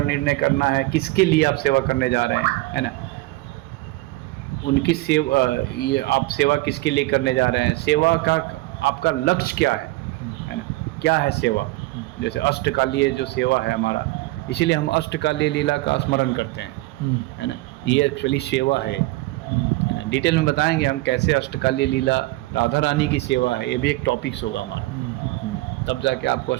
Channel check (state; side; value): quieter; left; 20.4 dB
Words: निर्णय करना है, किसके लिए आप सेवा करने जा रहे हैं, है ना। उनकी सेवा, ये आप सेवा किसके लिए करने जा रहे हैं, सेवा का आपका लक्ष्य क्या है ना। क्या है सेवा? जैसे अष्टकालीय जो सेवा है हमारा, इसीलिए हम अष्टकालीय लीला का स्मरण करते हैं, है ना। ये एक्चुअली सेवा है ना। डिटेल में बताएंगे हम कैसे अष्टकालीय लीला, राधा रानी की सेवा है। ये भी एक टॉपिक्स होगा हमारा। तब जाके आपको